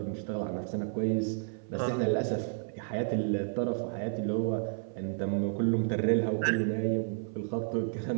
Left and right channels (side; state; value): left; silent; 57 dB below the other